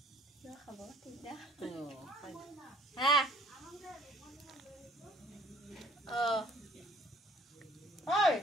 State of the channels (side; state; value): both; normal; correlation 0.57